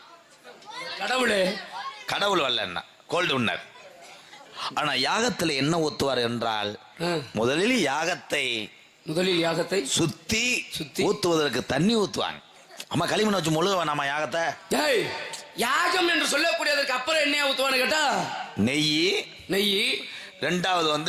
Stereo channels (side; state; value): both; identical; correlation 1.00